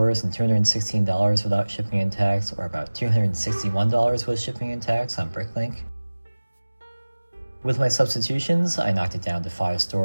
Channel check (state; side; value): inverted; both; correlation -1.00